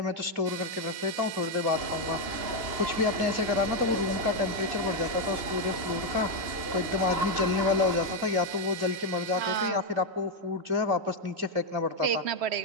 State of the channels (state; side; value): late; left; 3.6 ms